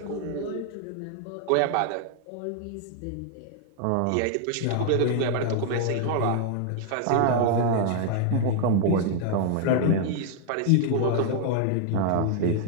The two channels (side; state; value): both; different; correlation 0.00